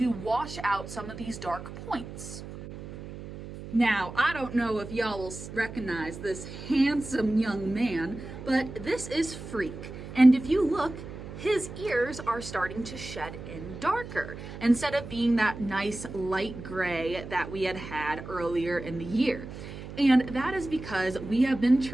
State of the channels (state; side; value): noise; right; hum, 11 dB below the sound